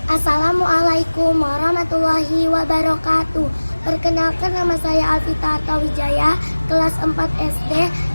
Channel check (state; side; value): inverted; both; correlation -1.00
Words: Assalamualaikum warahmatullahi wabarakatuh. Perkenalkan, nama saya Alvita Artawijaya, kelas 4 SD